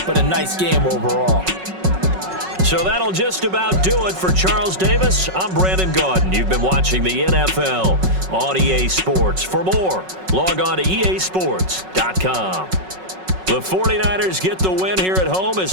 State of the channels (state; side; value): late; left; 5.4 ms